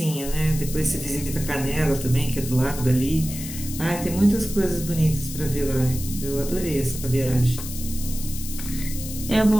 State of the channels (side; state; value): left; noise; hiss, 10 dB below the sound